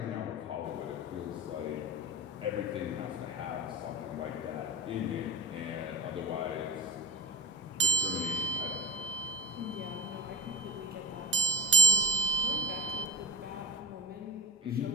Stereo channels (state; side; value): normal; both; correlation 0.36